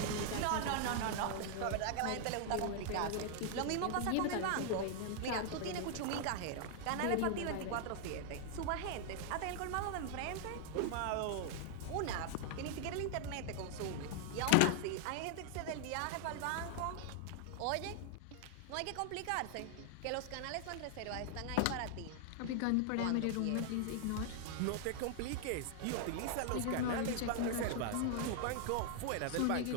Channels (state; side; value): different; both; correlation 0.00